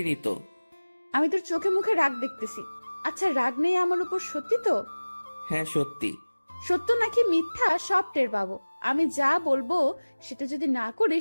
তো। আমি তোর চোখে মুখে রাগ দেখতেছি। আচ্ছা, রাগ নেই আমার উপর, সত্যি তো? হ্যাঁ সত্যি। সত্য নাকি মিথ্যা সব টের পাবো। আমি যা বলবো সেটা যদি না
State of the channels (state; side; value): inverted; both; correlation -1.00